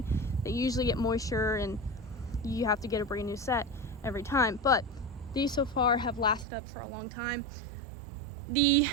they usually get moisture and you have to get a brand new set every time. But these so far have lasted up for a long time. The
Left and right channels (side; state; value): left; drops out; at 6.5 s